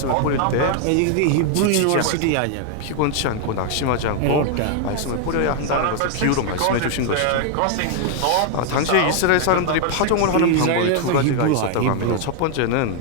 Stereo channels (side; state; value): both; different; correlation 0.00